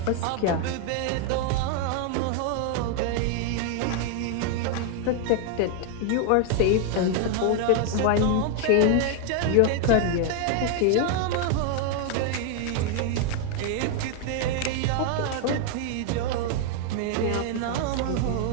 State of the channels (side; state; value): both; different; correlation 0.00